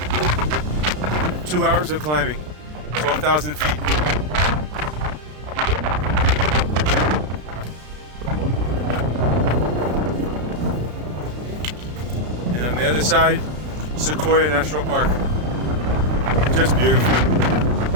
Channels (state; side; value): late; left; 33 ms